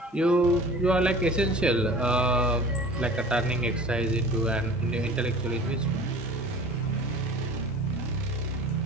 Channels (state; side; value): normal; both; correlation 0.43